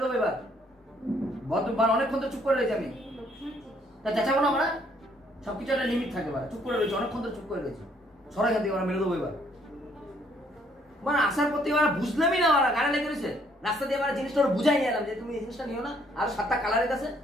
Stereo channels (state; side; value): normal; both; correlation 0.66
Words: দেবো এবার। অনেকক্ষণ তো চুপ করে রয়েছি আমি, তা চেঁচাবো না আমরা, সবকিছু একটা লিমিট থাকে, চুপ করে রয়েছে অনেকক্ষণ তো চুপ করে রয়েছে, সরাই এখান থেকে মেরে দেবো এবার। মানে আসার পর থেকে বুঝলামই না, গানে লেগে রয়েছে রাস্তা দিয়ে আমার জিনিসটা ওরা বুঝাই নিলাম যে তুমি এই জিনিসটা নিও না, আর 7টা কালারের কাছে